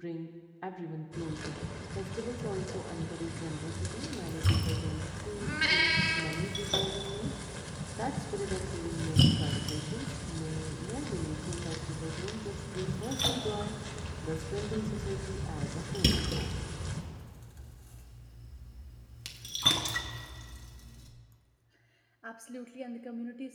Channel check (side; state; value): both; identical; correlation 1.00